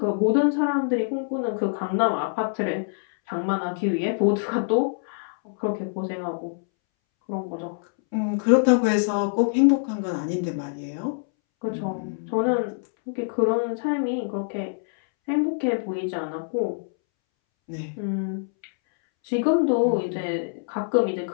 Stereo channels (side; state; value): right; silent; 62 dB below the other